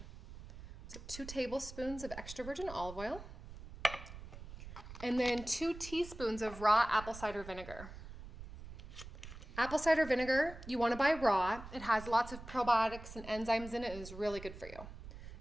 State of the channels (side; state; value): right; noise; rumble, 13 dB below the sound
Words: So 2 tablespoons of extra virgin olive oil. And then 2 teaspoons of raw apple cider vinegar. Apple cider vinegar, you want to buy raw. It has lots of probiotics and enzymes in it and is really good for you.